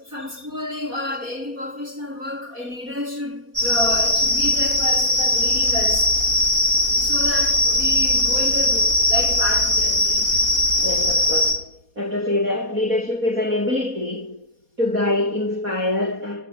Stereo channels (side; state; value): left; late; 4.2 ms